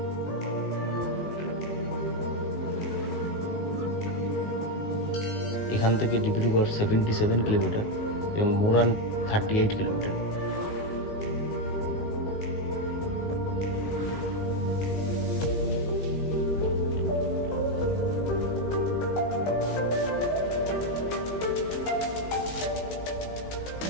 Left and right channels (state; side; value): late; right; 19 ms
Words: এখান থেকে ডিব্রুগড় 77 কিলোমিটার এবং মোরান 38 কিলোমিটার।